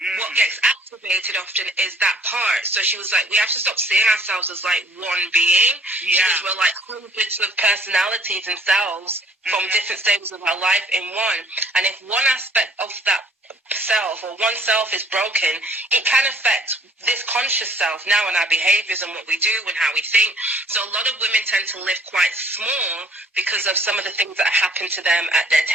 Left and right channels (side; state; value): both; normal; correlation 0.57